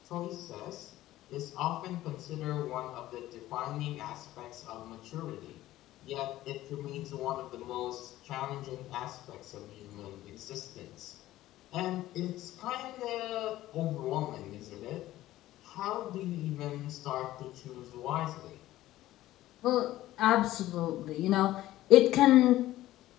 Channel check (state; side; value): quieter; right; 15.2 dB